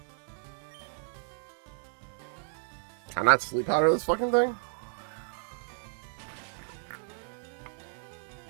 Can I not sleep powder this fucking thing?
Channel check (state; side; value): silent; left; 56 dB below the other